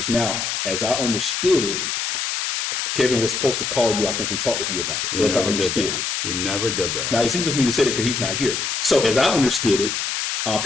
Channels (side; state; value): left; noise; hiss, 2 dB below the sound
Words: Now, as I understood it, Kevin was supposed to call you, I think, and talk with you about it. He As I never did understood that. it. He never did that. Now, it's easy for me to say that because he's not here. So as I understood it,